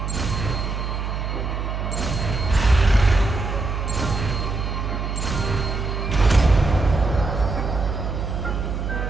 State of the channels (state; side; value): noise; right; hum, 3 dB below the sound